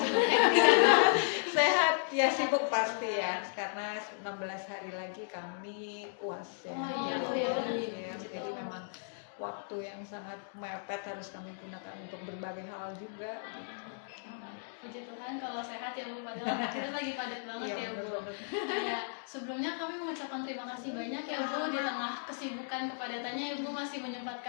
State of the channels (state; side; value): silent; right; digital silence